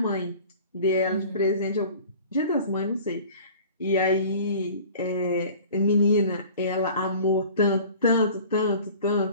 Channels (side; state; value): both; inverted; correlation -0.44